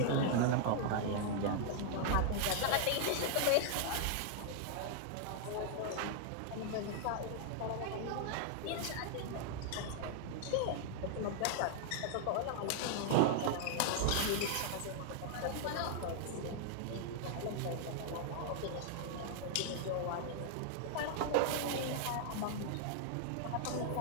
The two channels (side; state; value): both; different; correlation -0.01